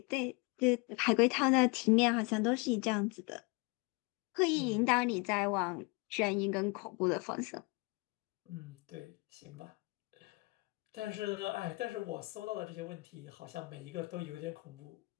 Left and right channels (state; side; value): quieter; right; 27.1 dB